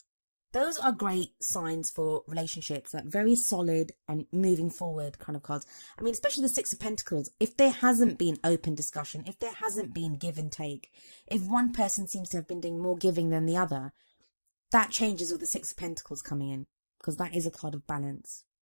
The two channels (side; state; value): both; inverted; correlation -1.00